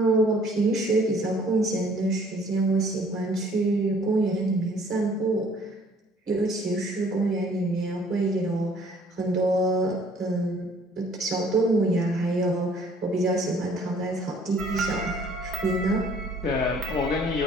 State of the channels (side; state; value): both; normal; correlation 0.57